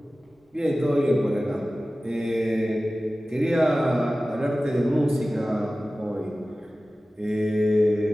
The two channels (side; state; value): both; normal; correlation 0.96